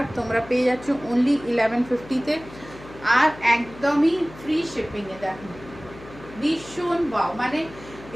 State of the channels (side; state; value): left; noise; hum, 18 dB below the sound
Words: তোমরা পেয়ে যাচ্ছ অনলি 1150-তে, আর একদমই ফ্রি শিপিংয়ে। দেখো ভীষণ ওয়াও, মানে